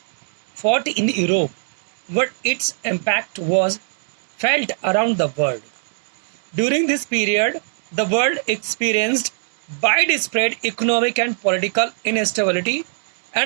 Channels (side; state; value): left; silent; digital silence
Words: fought in Europe, but its impact was felt around the world. During this period, the world experienced widespread economic and political instability